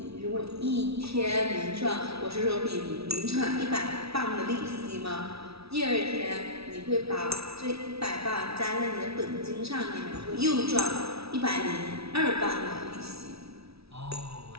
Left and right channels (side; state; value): left; late; 0.77 ms